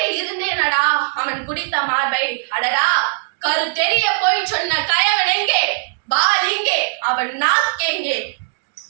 இருந்தேனடா அவன் குடித்த மார்பை. அடடா! கரு தெரிய போய் சொன்ன கயவன் எங்கே? பால் இங்கே, அவன் நாக்கெங்கே?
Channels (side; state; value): left; silent; digital silence